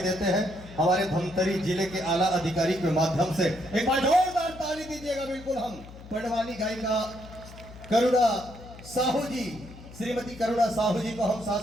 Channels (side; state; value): left; noise; hum, 17 dB below the sound